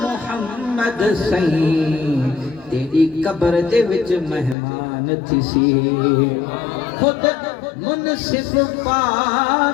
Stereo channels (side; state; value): right; drops out; at 4.5 s